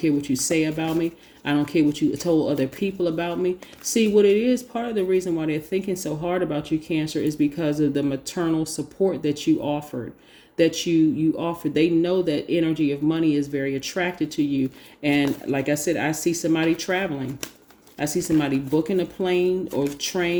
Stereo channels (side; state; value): both; identical; correlation 1.00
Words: what you say about me. I don't care what you told other people about me. See, what it is, part of the reason why they're thinking so hard about you, Cancer, is because of the maternal support that you offered. You offered. They know that energy of money is very attracted to you. And like I said, I see somebody traveling. I see somebody booking a plane or